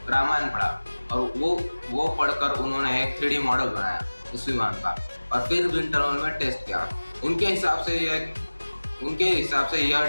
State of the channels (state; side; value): inverted; both; correlation -1.00